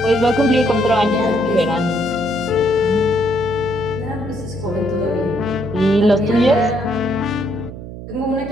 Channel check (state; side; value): noise; right; hum, 12 dB below the sound